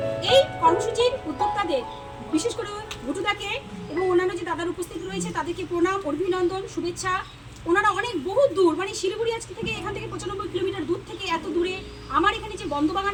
এই কর্মসূচির উদ্যোক্তাদের বিশেষ করে ঘুটুদাকে এবং অন্যান্য যে দাদার উপস্থিত রয়েছে তাদেরকে প্রণাম, অভিনন্দন, শুভেচ্ছা। ওনারা অনেক বহু দূর, মানে শিলিগুড়ি আজকে থেকে এখান থেকে 95 কিলোমিটার দূর থেকে এত দূরে আমার এখানে যে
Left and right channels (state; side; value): identical; both; correlation 1.00